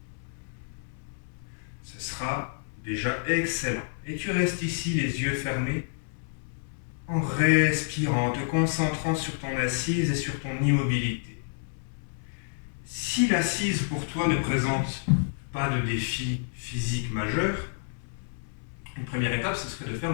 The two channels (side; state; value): right; silent; 59 dB below the other